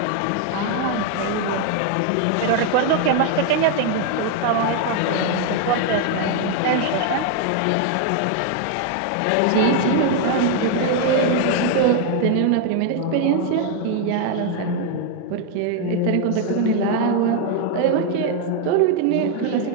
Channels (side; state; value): both; different; correlation 0.01